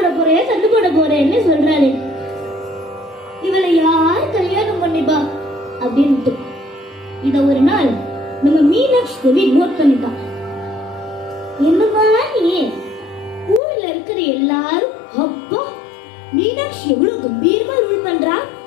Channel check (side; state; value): right; drops out; at 13.6 s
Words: போறேன்னு சொல்றாளே இவளை யார் கல்யாணம் பண்ணிப்பா அப்படின்ட்டு இத ஒரு நாள் நம்ம மீனாட்சி தேவி நோட் பண்ணிட்டான். என்னமா நீ ஊர்ல இருக்கிற எல்லாரும் அப்பா மீனாட்சி எவ்வளவு கம்பீரமா ரூல் பண்றா,